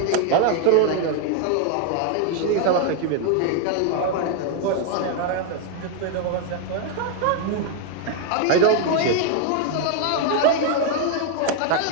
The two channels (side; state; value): both; different; correlation 0.00